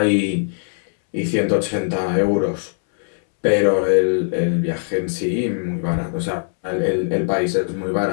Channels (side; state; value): right; silent; 65 dB below the other